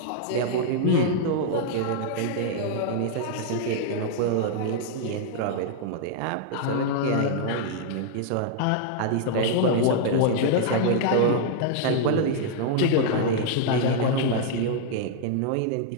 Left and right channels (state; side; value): different; both; correlation -0.01